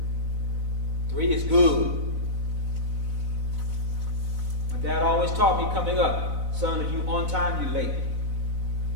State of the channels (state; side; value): late; left; 4.0 ms